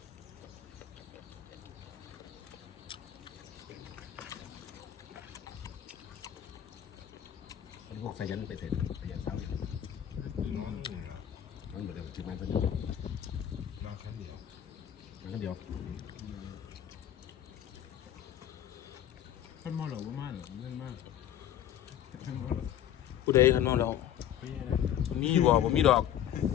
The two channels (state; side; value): quieter; right; 10.7 dB